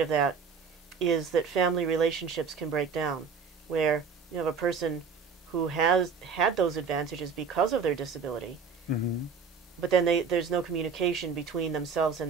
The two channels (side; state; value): left; quieter; 5.7 dB